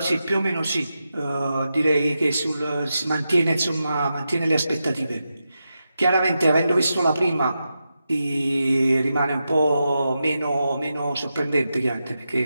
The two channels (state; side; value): inverted; both; correlation -0.88